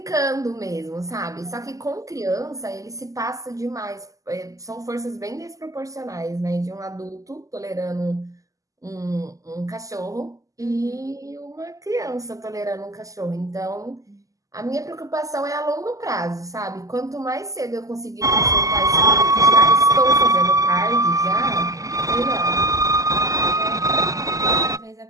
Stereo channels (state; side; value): late; left; 0.16 ms